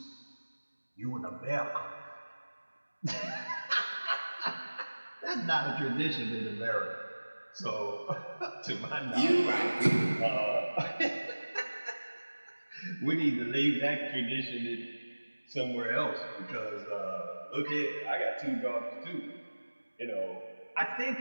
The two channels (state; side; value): inverted; both; correlation -1.00